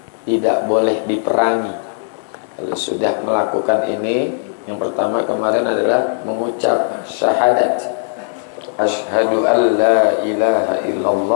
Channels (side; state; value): right; silent; digital silence